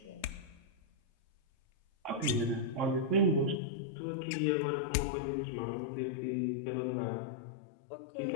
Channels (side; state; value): right; drops out; at 3.6 s